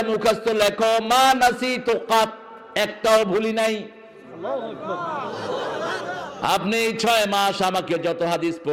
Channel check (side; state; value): both; identical; correlation 1.00